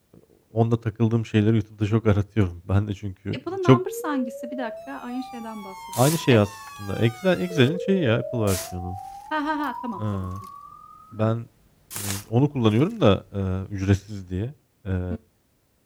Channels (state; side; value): identical; both; correlation 1.00